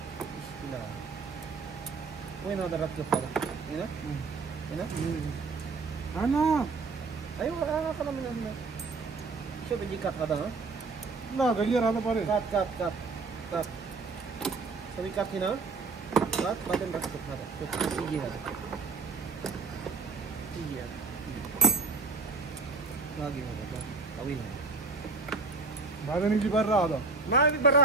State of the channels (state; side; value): quieter; left; 4.2 dB